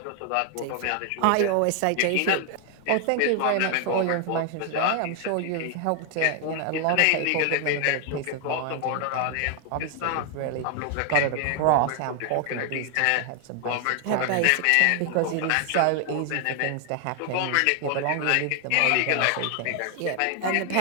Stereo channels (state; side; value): different; both; correlation 0.00